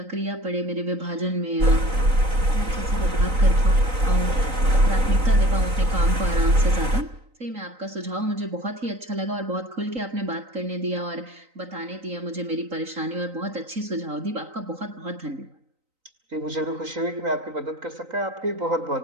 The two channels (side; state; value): left; late; 3.9 ms